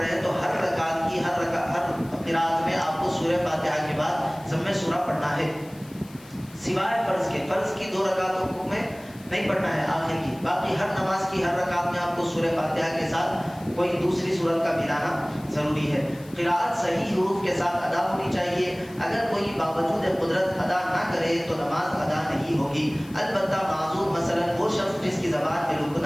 ہیں تو ہر رکعت کی ہر قراءت میں آپ کو سورہ فاتحہ کے بعد ضم سورہ پڑھنا ہے، سوائے فرض کے. فرض کی 2 رکعتوں میں نہیں پڑھنا ہے آخر کی، باقی ہر نماز کی ہر رکعت میں آپ کو سورہ فاتحہ کے ساتھ کوئی دوسری سورت کا ملانا ضروری ہے. قراءت صحیح حروف کے ساتھ ادا ہونی چاہیے. اگر کوئی باوجود قدرت ادا نہ کرے تو نماز ادا نہیں ہوگی. البتہ معذور مثلا وہ شخص جس کی زبان میں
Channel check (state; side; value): noise; left; hiss, 23 dB below the sound